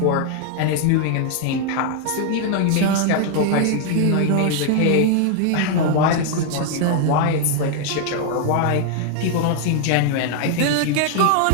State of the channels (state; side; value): different; both; correlation 0.00